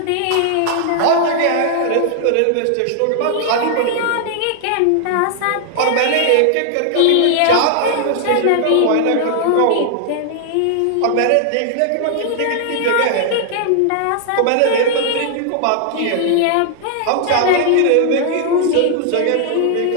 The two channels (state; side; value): different; both; correlation 0.00